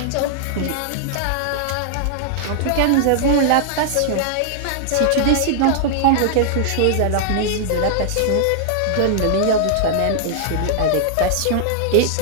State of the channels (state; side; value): different; both; correlation -0.01